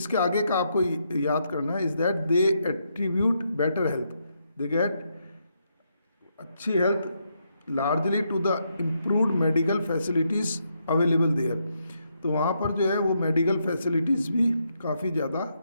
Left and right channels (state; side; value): inverted; both; correlation -0.79